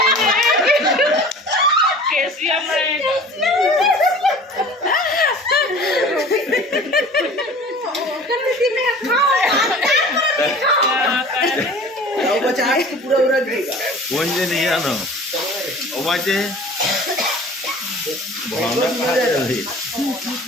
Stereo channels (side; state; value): both; normal; correlation 0.43